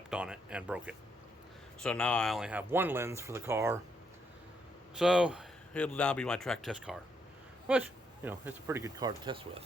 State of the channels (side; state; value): both; normal; correlation 0.76